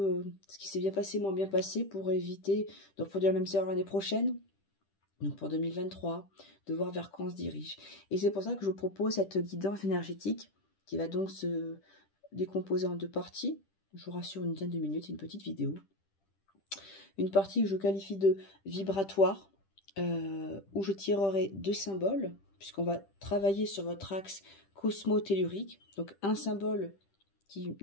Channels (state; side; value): late; right; 10 ms